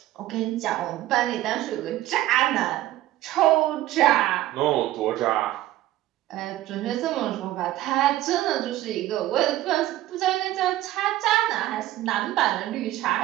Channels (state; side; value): quieter; left; 15.0 dB